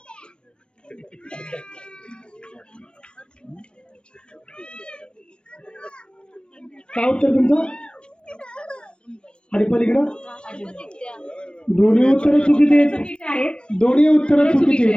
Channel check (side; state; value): right; late; 0.056 ms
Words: काय उत्तर तुमचं? आणि पलीकडं दोन्ही उत्तर चुकीचे आहेत. दोन्ही उत्तर चुकीचे.